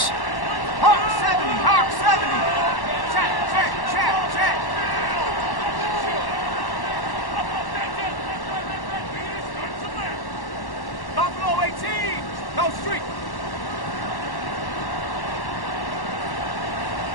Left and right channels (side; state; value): right; late; 1.1 ms